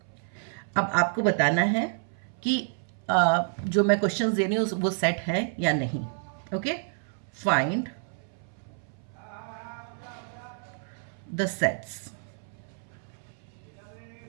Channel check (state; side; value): silent; left; 58 dB below the other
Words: अब आपको बताना है कि जो मैं क्वेश्चंस दे रही हूँ वो सेट है या नहीं. Okay. Find the sets.